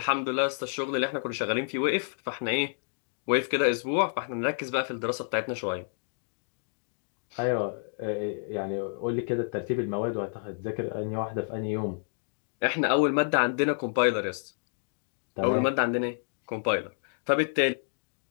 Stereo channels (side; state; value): right; silent; digital silence